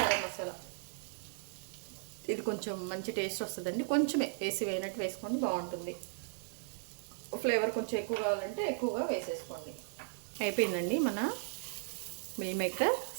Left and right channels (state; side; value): silent; left; digital silence